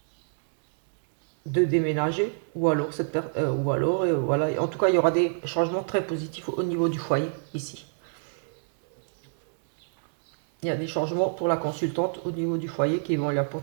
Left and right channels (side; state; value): left; silent; 61 dB below the other